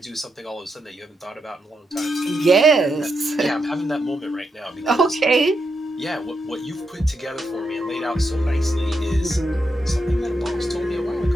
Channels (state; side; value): normal; both; correlation 0.84